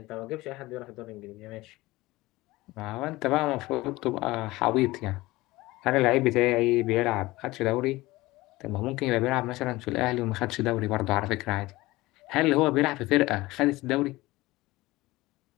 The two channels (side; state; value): right; quieter; 19.6 dB